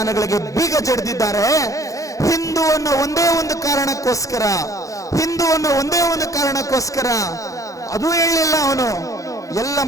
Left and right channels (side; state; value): right; late; 0.16 ms